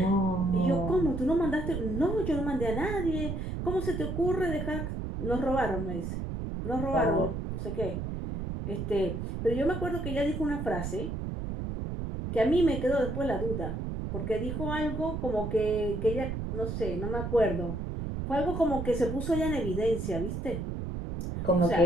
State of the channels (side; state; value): right; noise; rumble, 4 dB below the sound